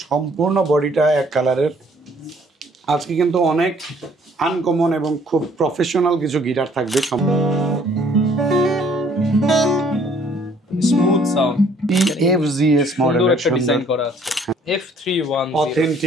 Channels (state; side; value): normal; both; correlation 0.60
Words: সম্পূর্ণ বডিটা এক কালারের। আজকে কিন্তু অনেক আনকমন এবং খুব প্রফেশনাল কিছু গিটার থাকবে। স্মুথ সাউন্ড EFGS মডেলের একটা ডিজাইন করা আছে। F310